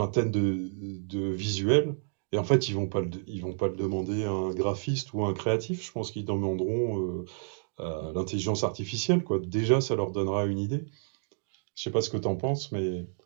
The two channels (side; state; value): left; silent; digital silence